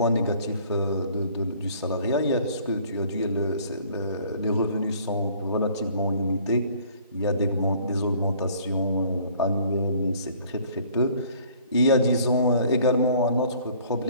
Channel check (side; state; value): both; inverted; correlation -0.56